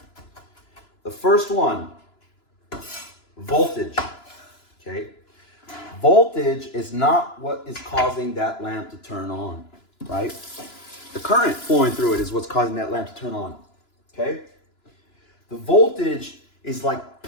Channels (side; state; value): right; late; 2.9 ms